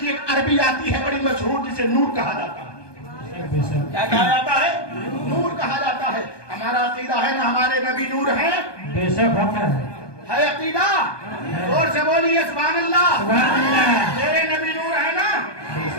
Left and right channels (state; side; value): late; right; 1.2 ms